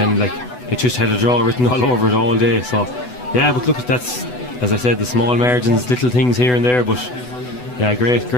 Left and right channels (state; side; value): late; right; 8.0 ms